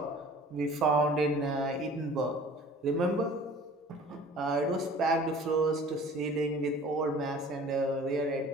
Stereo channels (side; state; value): both; normal; correlation 0.47